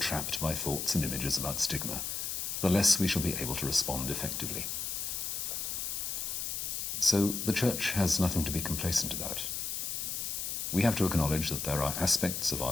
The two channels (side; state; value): left; noise; hiss, 3 dB below the sound